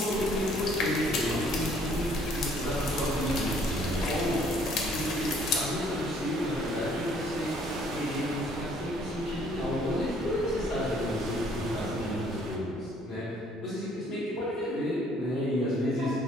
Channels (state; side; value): normal; both; correlation 0.61